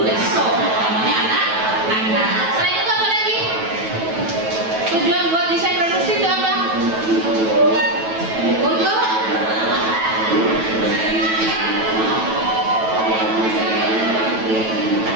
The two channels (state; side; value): late; left; 9.1 ms